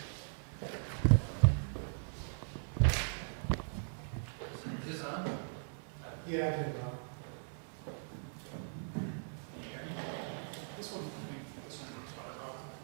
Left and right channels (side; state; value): left; silent; digital silence